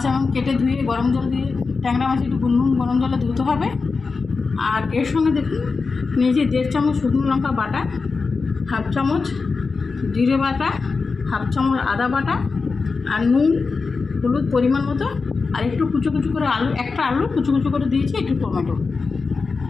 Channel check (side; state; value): right; quieter; 4.5 dB